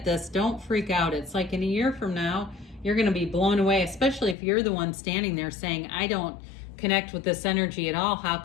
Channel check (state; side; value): drops out; right; at 4.4 s